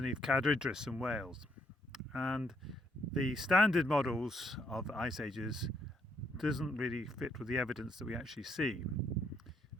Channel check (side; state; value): both; normal; correlation 0.71